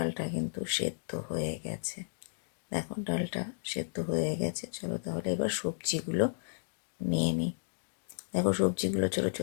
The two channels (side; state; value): right; silent; digital silence